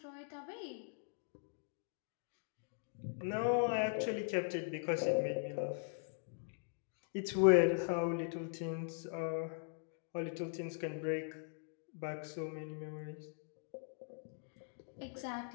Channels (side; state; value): right; silent; digital silence